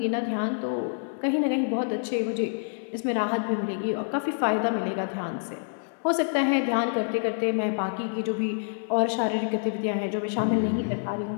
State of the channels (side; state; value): right; silent; 60 dB below the other